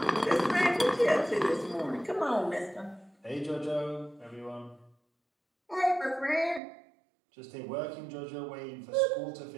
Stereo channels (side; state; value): left; drops out; at 6.6 s